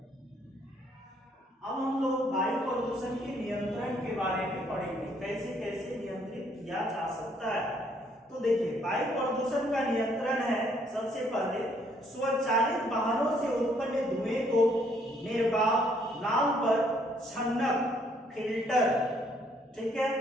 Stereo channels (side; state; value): both; normal; correlation 0.67